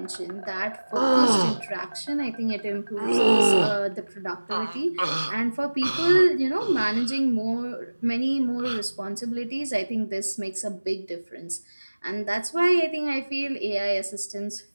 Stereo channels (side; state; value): both; inverted; correlation -1.00